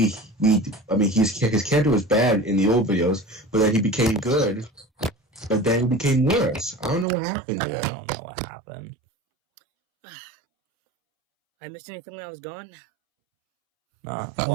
his character was bad in the old videos, but then he became good, but then he became worse. I don't know what happened I there. don't know what happened. I missed anything when I was gone?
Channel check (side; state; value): left; drops out; at 7.1 s